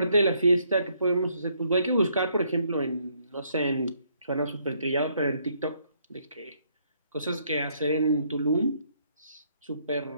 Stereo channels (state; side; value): inverted; both; correlation -0.70